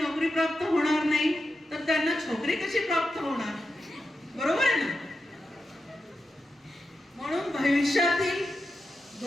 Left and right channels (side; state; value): both; normal; correlation 0.89